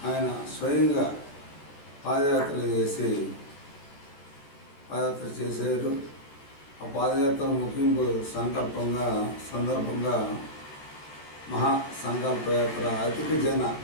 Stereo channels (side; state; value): right; late; 13 ms